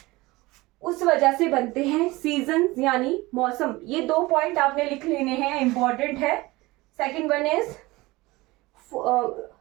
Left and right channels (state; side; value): quieter; left; 21.0 dB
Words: उस वजह से बनते हैं सीजन यानी मौसम। ये 2 पॉइंट आपने लिख लेने हैं, इंपॉर्टेंट है। Second one is